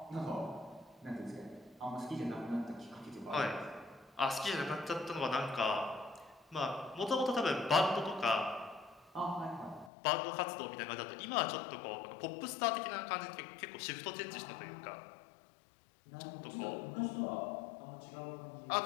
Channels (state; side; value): drops out; right; at 9.9 s